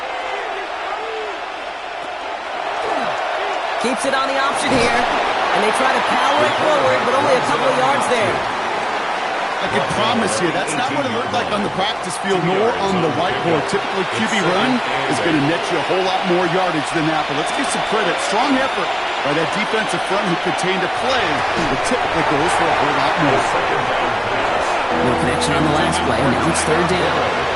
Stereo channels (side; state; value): both; identical; correlation 1.00